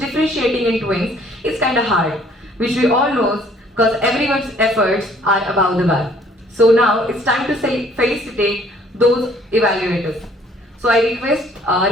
differentiating in twins is kind of hard, which we all know because everyone's efforts are above the bar. So now it's time to felicitate those evaluators. So I request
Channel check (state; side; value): normal; both; correlation 0.59